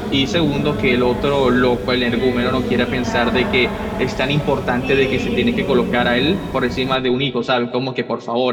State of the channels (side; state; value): both; identical; correlation 1.00